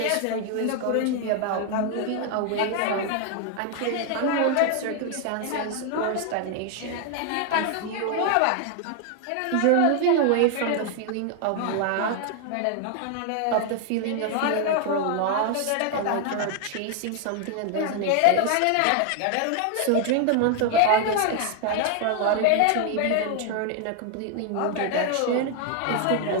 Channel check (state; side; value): different; both; correlation 0.00